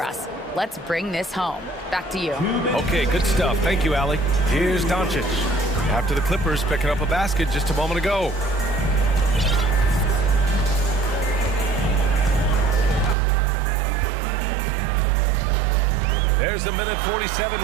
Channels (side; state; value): left; drops out; at 13.2 s